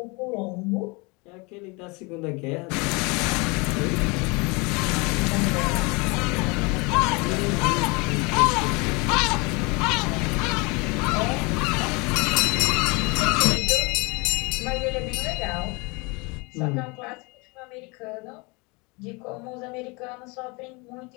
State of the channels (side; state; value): right; quieter; 28.0 dB